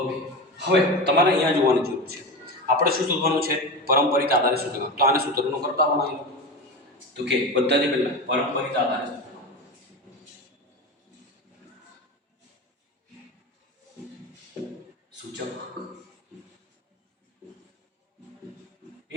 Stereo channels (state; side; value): normal; both; correlation 0.24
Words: હવે તમારે અહીંયા જોવાની જરૂર છે, આપણે શું શોધવાનું છે? પરંપરિત આધારે સૂચકાંક. તો આને સૂત્રનો કરતા બનાવી લો. તો કે પદ્ધતિ પહેલા પરંપરિત આધારે સૂચકાંક